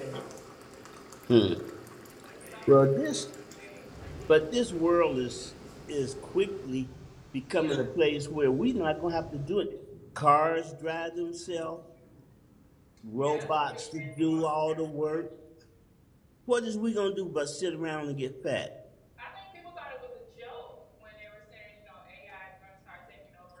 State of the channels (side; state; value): both; identical; correlation 1.00